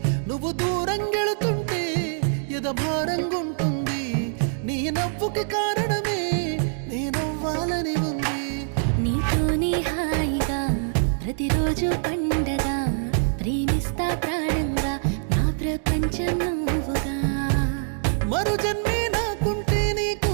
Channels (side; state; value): left; silent; digital silence